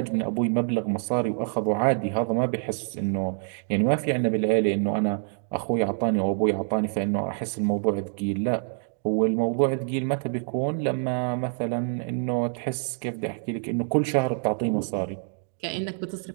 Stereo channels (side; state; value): left; silent; 59 dB below the other